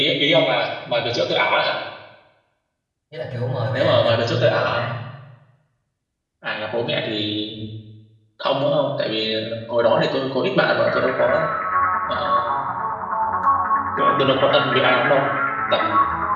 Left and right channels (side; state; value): both; identical; correlation 1.00